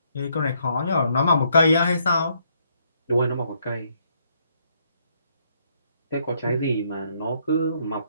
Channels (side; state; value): both; inverted; correlation -0.71